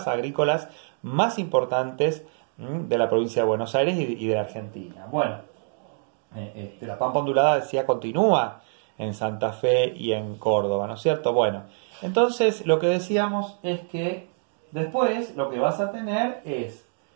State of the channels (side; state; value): left; silent; 61 dB below the other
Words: agrícolas más importantes de la provincia de Buenos Aires y de la Argentina. Bueno, la pampa ondulada, decía, continúa en Santa Fe y en Córdoba, ¿no es cierto? Bueno, entonces lo que decíamos es que después lo que vas a tener es